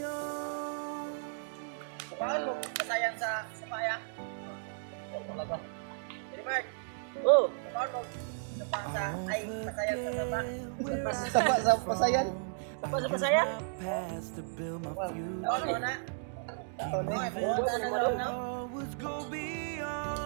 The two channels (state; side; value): silent; left; digital silence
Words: Paano mo kasayan sa paya? Talaga. Jadi Mark. Oh, paano mo sa ay kasayan sa baba? Sapa sa pasayan. Sapa sa pasayan? Past to build my future. Ano na? Always go